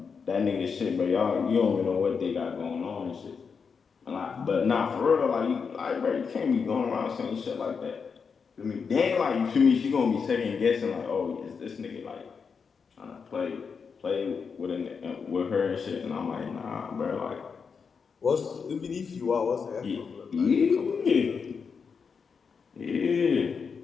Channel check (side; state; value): right; quieter; 5.8 dB